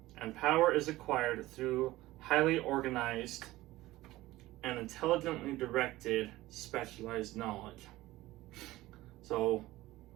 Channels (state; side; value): quieter; left; 17.4 dB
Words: and power is acquired through highly organized and intelligently directed specialized knowledge. So